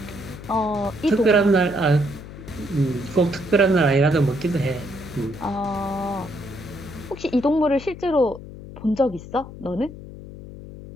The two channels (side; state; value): left; noise; hum, 14 dB below the sound